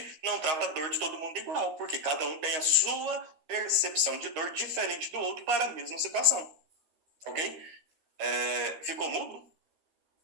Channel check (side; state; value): left; late; 13 ms